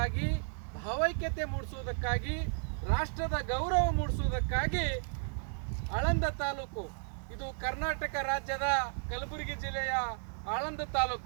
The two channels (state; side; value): silent; left; 55 dB below the other